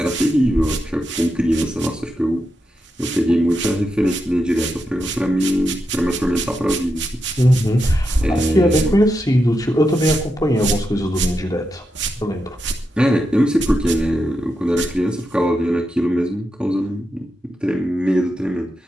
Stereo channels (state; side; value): normal; both; correlation 0.86